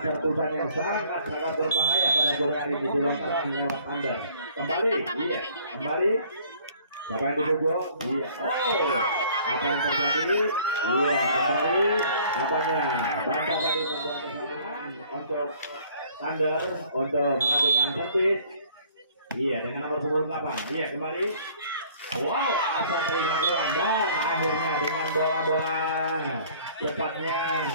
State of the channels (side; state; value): both; inverted; correlation -0.55